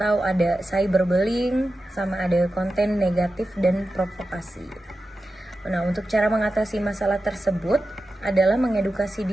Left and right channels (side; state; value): both; normal; correlation 0.92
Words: ada cyberbullying, sama ada konten negatif dan provokasi. Nah, untuk cara mengatasi masalah tersebut adalah mengedukasi